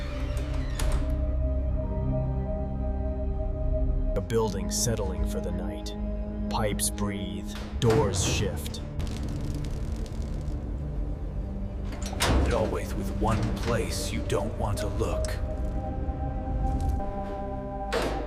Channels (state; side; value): identical; both; correlation 1.00